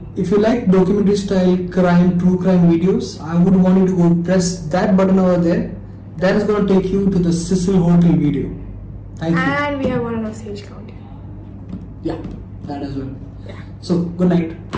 If you like documentary style true crime videos, I would want you to go press that button over there. That is going to take you to the Cecil Hotel video. Thank you. And we have one on our stage count. Yeah, that as well. Yeah. So, good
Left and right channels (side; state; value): both; identical; correlation 1.00